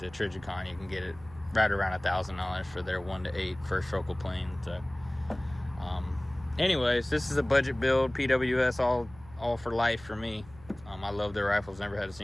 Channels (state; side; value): noise; right; hum, 21 dB below the sound